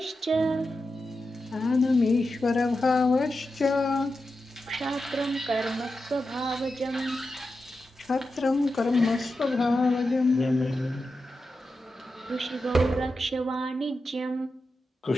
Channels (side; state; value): both; normal; correlation 0.90